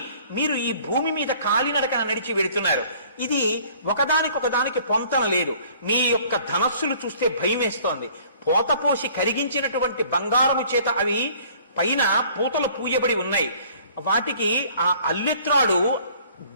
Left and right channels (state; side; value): inverted; both; correlation -0.54